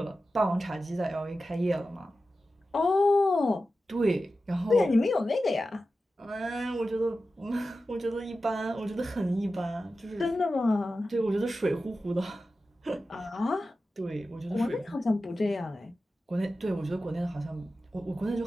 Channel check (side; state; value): both; normal; correlation 0.93